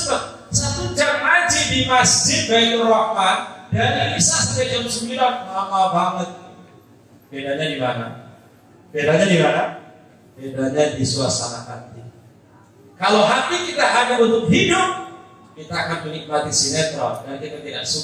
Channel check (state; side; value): identical; both; correlation 1.00